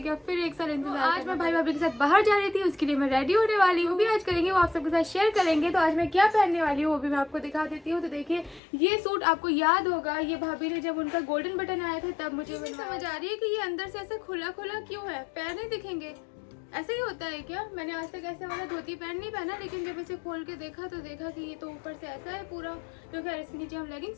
अब फिर एक साल इंतजार। आज मैं भाई भाभी के साथ बाहर जा रही थी, उसके लिए मैं रेडी होने वाली हूँ, भी आज करेंगे, वो आप सबके साथ शेयर करेंगे। तो आज मैं क्या पहनने वाली हूँ वो भी मैं आपको दिखा देती हूँ। तो देखिए, ये सूट आपको याद होगा, ये भाभी ने जब उनका गोल्डन बटन आया था तब मुझे समझ आ रही है कि ये अंदर से ऐसा खुला खुला क्यों है, पैर नहीं दिखेंगे। ऐसे ही होता है क्या? मैंने आज तक ऐसे वाला धोती पैंट नहीं पहना, लेकिन जब इसे खोल के देखा तो देखा कि ये तो ऊपर से ऐसा है पूरा। तो खैर इसके नीचे हम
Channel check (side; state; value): right; drops out; at 8.6 s